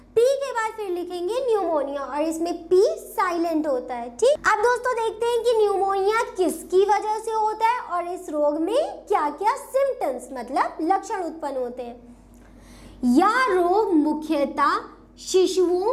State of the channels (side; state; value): both; identical; correlation 1.00